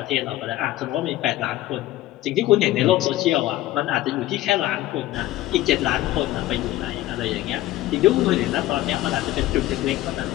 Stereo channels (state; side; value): quieter; right; 15.6 dB